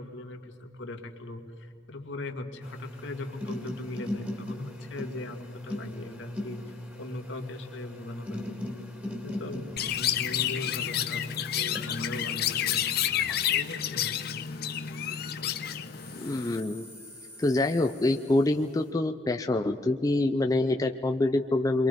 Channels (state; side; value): quieter; right; 3.5 dB